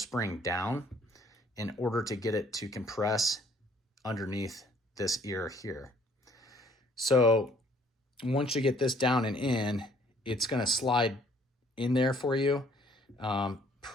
down in order to get it to compress underneath this ear here. So once you get this down and in, it's going to slide in there for you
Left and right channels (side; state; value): both; normal; correlation 0.61